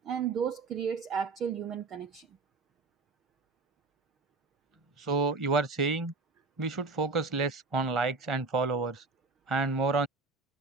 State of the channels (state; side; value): quieter; left; 4.0 dB